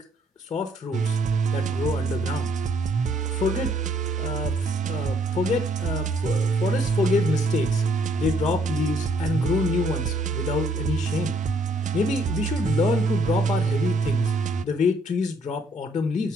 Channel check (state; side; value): normal; both; correlation 0.66